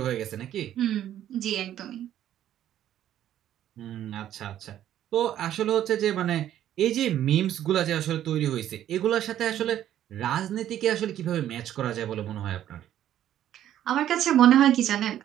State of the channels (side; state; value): left; quieter; 11.5 dB